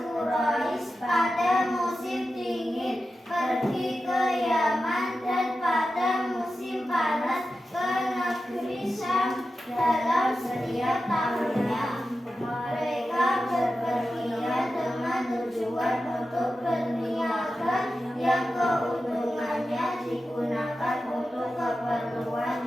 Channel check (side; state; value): both; normal; correlation 0.92